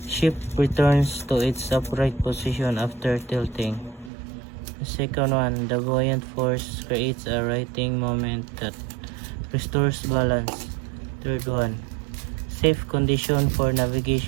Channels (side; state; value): left; drops out; at 4.1 s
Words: ship returns to its upright position after tilting. The second one, the buoyant force creates a righting moment that restores balance. Third one, safe condition for